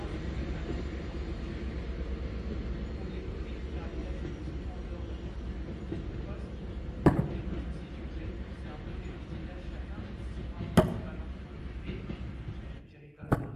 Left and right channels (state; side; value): identical; both; correlation 1.00